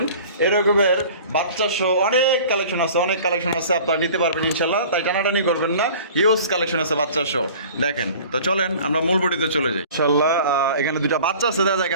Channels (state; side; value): inverted; both; correlation -0.44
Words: এরকমের বাচ্চা সহ অনেক কালেকশন আছে, অনেক কালেকশন আছে, আপনারা নিতে পারবেন ইনশাল্লাহ, তাই টানাটানি করবেন না। হিউজ কালেকশন আছে বাচ্চা সহ দেখেন। তো চলেন আমরা মূল ভিডিওতে চলে যাই ইনশাল্লাহ। এখানে দুইটা বাচ্চা আছে দেখা যায়